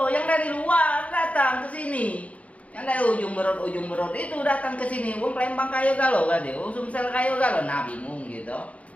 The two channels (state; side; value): late; right; 0.066 ms